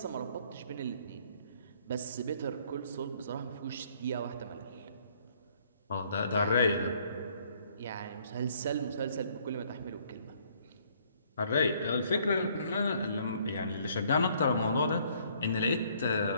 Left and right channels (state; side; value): inverted; both; correlation -0.63